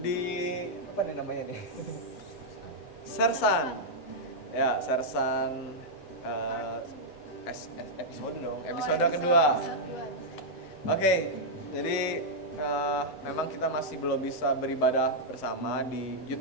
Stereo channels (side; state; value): right; late; 8.0 ms